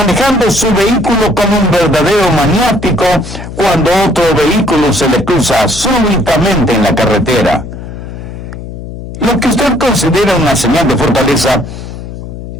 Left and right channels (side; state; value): left; noise; hum, 11 dB below the sound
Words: su vehículo como un verdadero maniático cuando otro vehículo se le cruza súbitamente en la carretera. Lo que usted considera una señal de fortaleza,